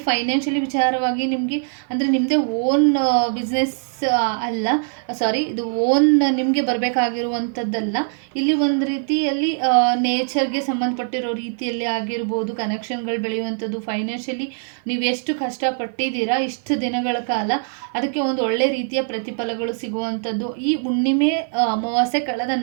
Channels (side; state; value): left; silent; 55 dB below the other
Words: ಫೈನಾನ್ಷಿಯಲಿ ವಿಚಾರವಾಗಿ ನಿಮಗೆ ಅಂದರೆ ನಿಮ್ಮದೇ ಓನ್ ಬಿಸ್ನೆಸ್ ಅಲ್ಲ, ಸಾರಿ, ಇದು ಓನ್ ನಿಮಗೆ ಬರಬೇಕಾಗಿರುವಂಥದ್ದಲ್ಲ. ಇಲ್ಲಿ ಒಂದು ರೀತಿಯಲ್ಲಿ ನೇಚರ್ಗೆ ಸಂಬಂಧಪಟ್ಟಿರೋ ರೀತಿಯಲ್ಲಿ ಆಗಿರ್ಬೋದು ಕನೆಕ್ಷನ್ಗಳು ಬೆಳೆಯುವಂಥದ್ದು. ಫೈನಾನ್ಷಿಯಲಿ ನೀವು ಎಷ್ಟು ಕಷ್ಟಪಟ್ಟಿದ್ದೀರಾ ಇಷ್ಟು ದಿನಗಳ ಕಾಲ, ಅದಕ್ಕೆ ಒಂದು ಒಳ್ಳೆ ರೀತಿಯ ಪ್ರತಿಫಲಗಳು ಸಿಗುವಂಥದ್ದು. ಈ ಹುಣ್ಣಿಮೆ ಅಮಾವಾಸ್ಯೆ ಕಳೆದ